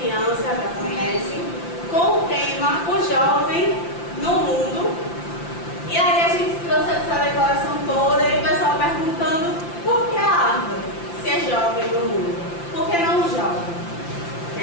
criança já conhece, com o tema O Jovem no Mundo. E aí a gente trouxe essa declaração toda e o pessoal perguntando por que a árvore, se é jovem no mundo, por que não jovem?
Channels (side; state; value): right; late; 5.8 ms